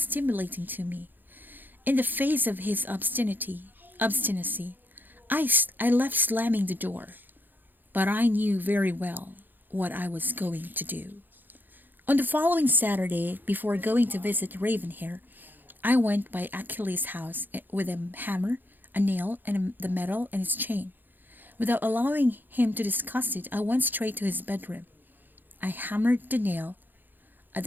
to me. In the face of his obstinacy, I left slamming the door, but I knew very well what I was going to do. On the following Saturday, before going to visit Ravenhair, I went by Achilles' house with a hammer, a nail, and the medal and its chain. Without allowing him to discuss it, I went straight to his bedroom. I hammered the nail at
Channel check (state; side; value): late; left; 0.089 ms